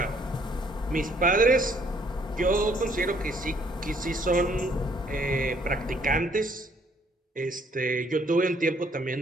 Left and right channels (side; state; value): both; normal; correlation 0.65